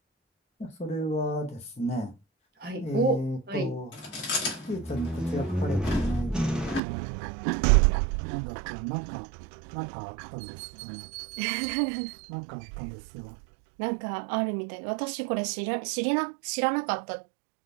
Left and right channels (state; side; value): drops out; left; at 6.8 s